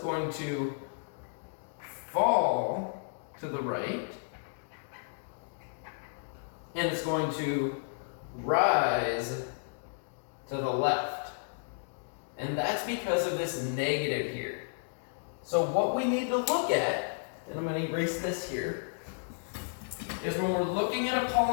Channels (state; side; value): silent; right; digital silence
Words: to fall to the right and it's going to rise to the left. And that's because of this negative here. So what we need to look at, and I'm going to erase this here, is when we're looking at a